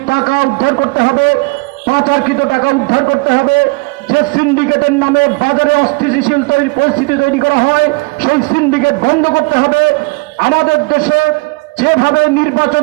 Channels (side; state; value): left; quieter; 26.9 dB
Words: টাকা উদ্ধার করতে হবে, পাচারকৃত টাকা উদ্ধার করতে হবে, সিন্ডিকেটের নামে বাজারে অস্থিতিশীল পরিস্থিতি তৈরি করা হয়, সেই সিন্ডিকেট বন্ধ করতে হবে। আমাদের দেশে যেভাবে